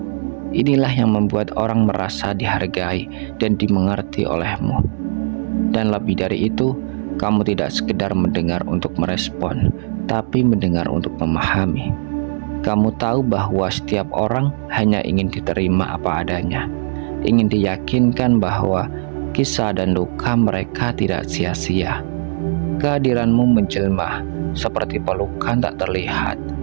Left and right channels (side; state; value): left; silent; digital silence